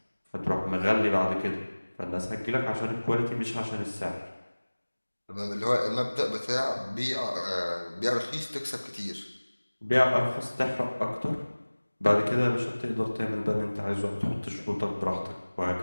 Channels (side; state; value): both; inverted; correlation -1.00